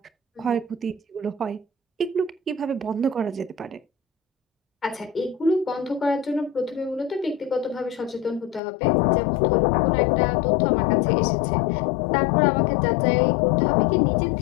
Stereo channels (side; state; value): right; drops out; at 8.6 s